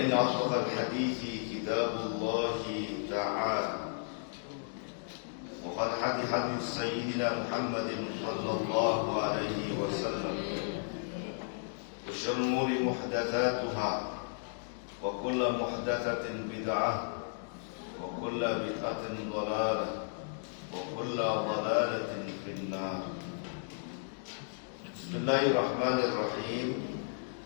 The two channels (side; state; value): right; silent; digital silence